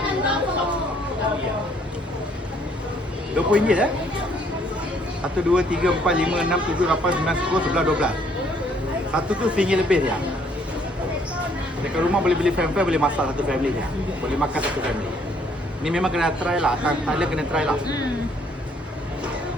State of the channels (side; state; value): both; normal; correlation 0.65